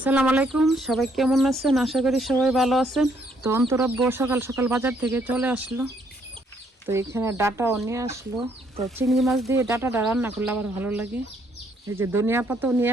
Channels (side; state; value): both; normal; correlation 0.69